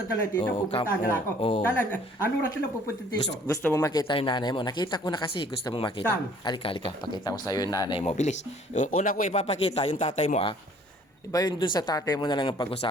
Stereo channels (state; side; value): normal; both; correlation 0.56